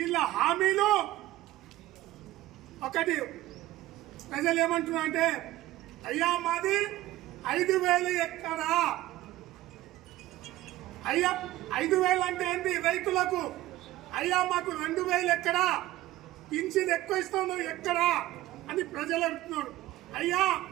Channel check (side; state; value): left; quieter; 16.2 dB